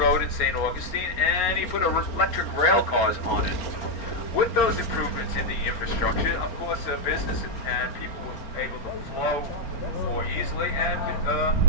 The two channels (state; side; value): late; right; 4.4 ms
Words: in St. Augustine, and he put electric rail cars on it. With those improvements in the infrastructure, of course, business and people were able to flow more easily, and